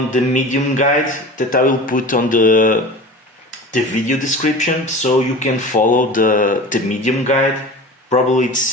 the Medium guide that I will put on the video description, so you can follow the Medium guide. Probably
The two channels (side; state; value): both; normal; correlation 0.35